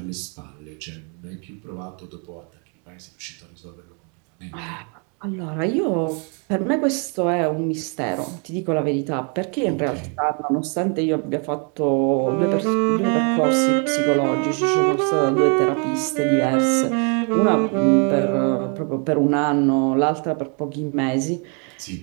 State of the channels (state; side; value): quieter; left; 37.5 dB